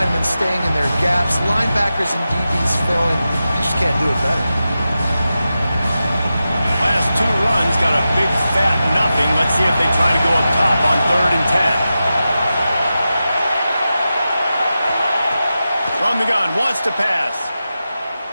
staying in their gaps, linebackers and DBs filling. You just can't do it better. Last 2 runs got a big fat nothing. Let's see if they try to go up top on 3rd and 10. From the gun, wants to pass.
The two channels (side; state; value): both; inverted; correlation -0.92